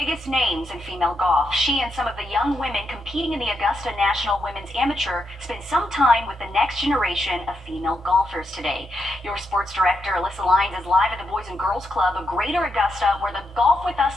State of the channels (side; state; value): both; normal; correlation 0.83